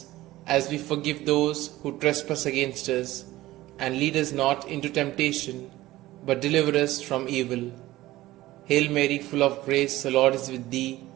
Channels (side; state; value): left; quieter; 16.9 dB